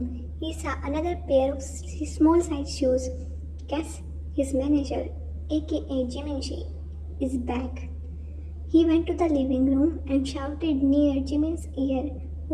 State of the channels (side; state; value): both; identical; correlation 1.00